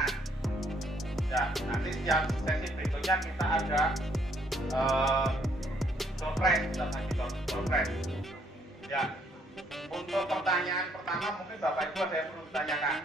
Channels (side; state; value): both; normal; correlation 0.68